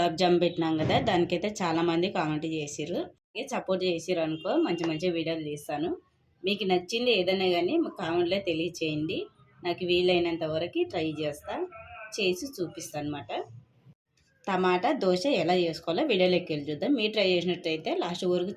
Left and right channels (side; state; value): both; identical; correlation 1.00